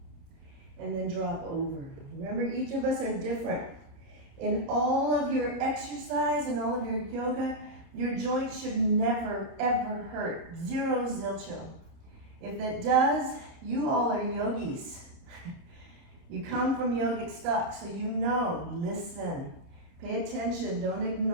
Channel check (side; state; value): left; late; 30 ms